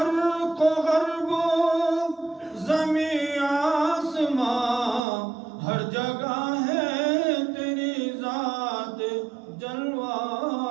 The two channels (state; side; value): drops out; left; at 5.0 s